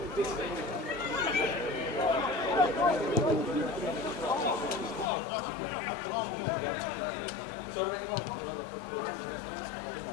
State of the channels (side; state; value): right; drops out; at 5.1 s